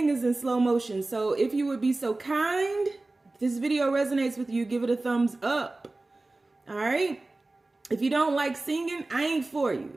is in slow motion. So if you would be so kind, if this video resonates with you, give it a thumbs up. All right. If you don't like singing, I ain't for you.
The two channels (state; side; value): quieter; left; 3.0 dB